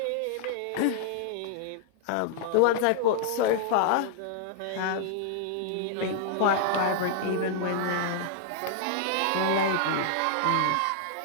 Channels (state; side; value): different; both; correlation -0.01